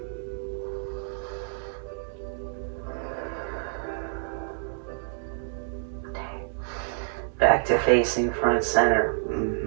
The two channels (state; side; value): silent; left; digital silence